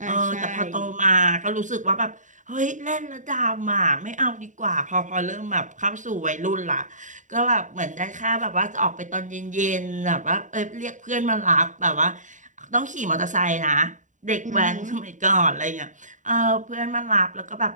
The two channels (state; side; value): late; left; 0.36 ms